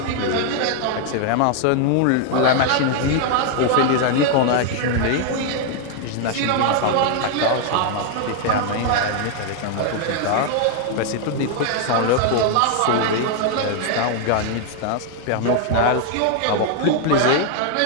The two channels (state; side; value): different; both; correlation 0.00